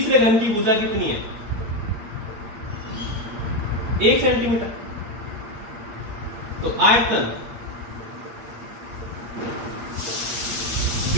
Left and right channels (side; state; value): left; late; 8.6 ms